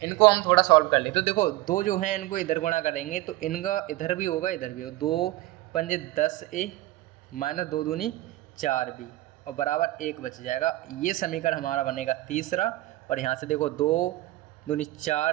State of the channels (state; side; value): quieter; left; 17.5 dB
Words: इनको हम थोड़ा सॉल्व कर ले तो देखो, 2 जो हैं इनको इधर गुणा करेंगे तो इनका इधर भी होगा इधर भी होगा, 2 पंजे 10a माइनस 2 दूनी 4b और बराबर 1 बच जाएगा। ये समीकरण हमारा बनेगा तीसरा, और यहाँ से देखो 2 दूनी